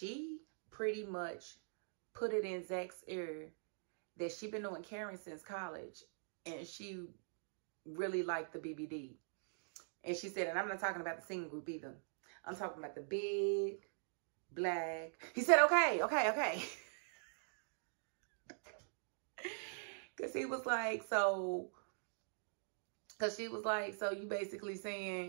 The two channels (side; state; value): left; silent; digital silence